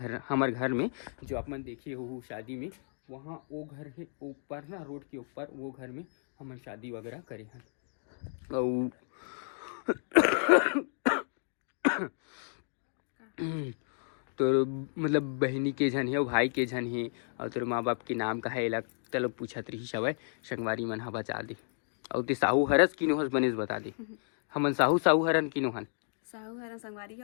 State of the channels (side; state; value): right; silent; digital silence